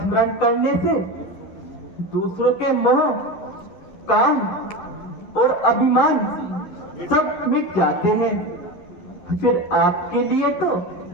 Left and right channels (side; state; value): right; late; 11 ms